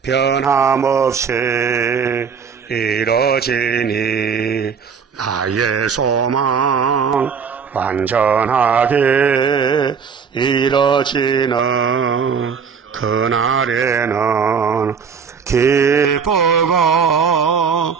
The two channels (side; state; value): left; quieter; 6.3 dB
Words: 변함없이 이뤄지니 나의 소망 완전하게 이뤄지는 그날에는 기쁘고